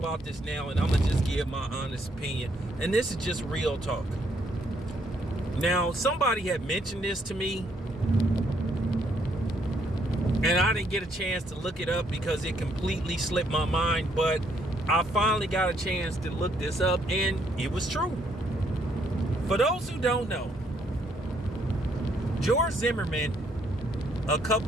this now, and I'm gonna just give my honest opinion. And this is just real talk. Now, somebody had mentioned this to me, and I didn't get a chance to look it up because it completely slipped my mind, but I finally got a chance to look this up, and it was true. For those who don't know, George Zimmerman, a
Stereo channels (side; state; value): both; normal; correlation 0.71